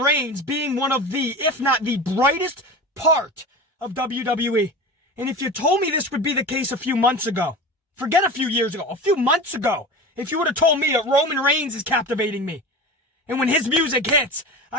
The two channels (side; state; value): both; normal; correlation 0.31